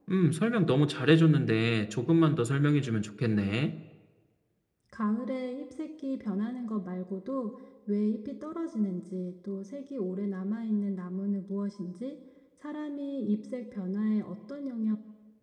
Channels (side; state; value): both; identical; correlation 1.00